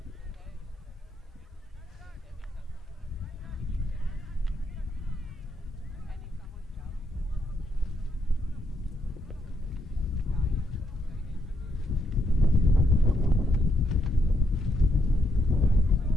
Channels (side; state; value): both; normal; correlation 0.77